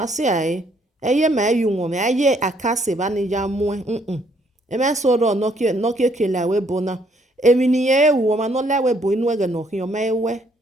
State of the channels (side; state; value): both; normal; correlation 0.68